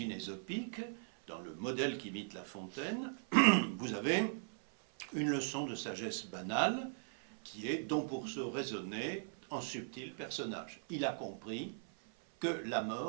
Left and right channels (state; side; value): silent; left; 52 dB below the other